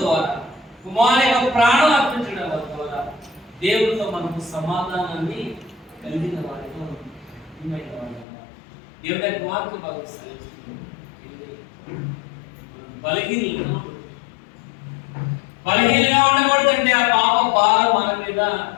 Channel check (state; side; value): drops out; right; at 8.2 s